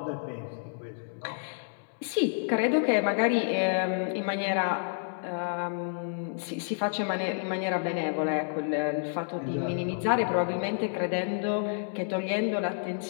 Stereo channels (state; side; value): silent; right; digital silence